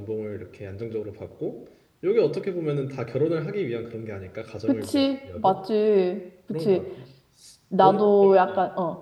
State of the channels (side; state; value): both; identical; correlation 1.00